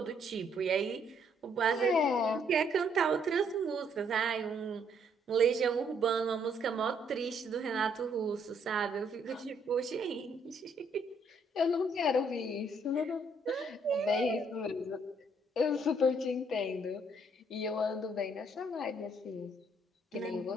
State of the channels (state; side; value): normal; both; correlation 0.68